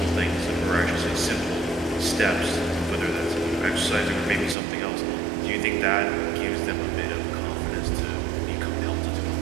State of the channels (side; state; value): left; drops out; at 4.5 s